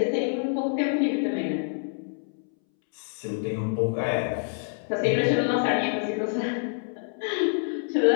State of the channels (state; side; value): silent; right; 60 dB below the other